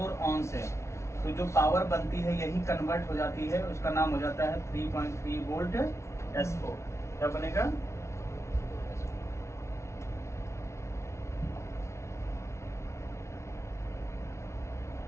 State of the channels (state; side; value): late; right; 0.13 ms